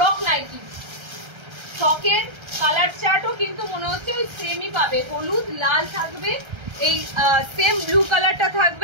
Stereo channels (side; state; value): left; late; 1.3 ms